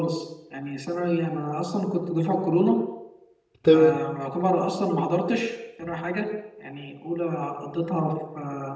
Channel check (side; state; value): both; identical; correlation 1.00